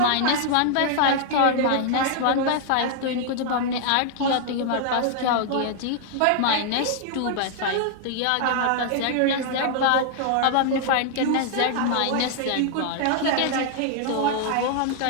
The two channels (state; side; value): different; both; correlation 0.00